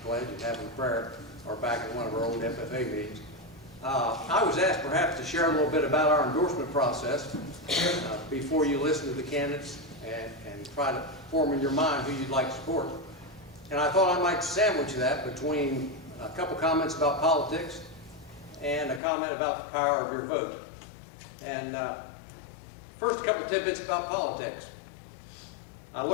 pledge and having prayer, or back in one of our old FFA meetings. I was asked perhaps to share a little bit about our endorsement process before you listen to the candidates and try to form in your mind who you'd like to support. And I thought I might sandwich that between a couple comments about politics and a comment about the power of your vote. And first, a couple tidbits about politics. I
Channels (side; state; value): right; drops out; at 19.0 s